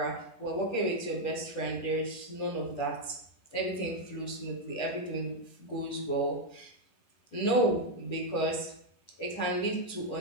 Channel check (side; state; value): right; late; 10 ms